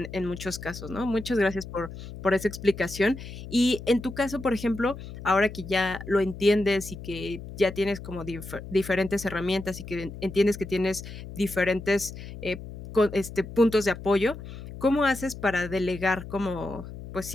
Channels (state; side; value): noise; left; hum, 12 dB below the sound